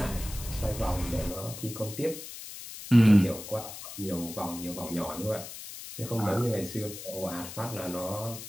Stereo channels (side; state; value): left; noise; hiss, 11 dB below the sound